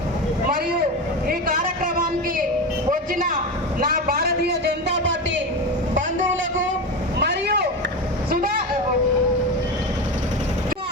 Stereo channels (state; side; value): normal; both; correlation 0.21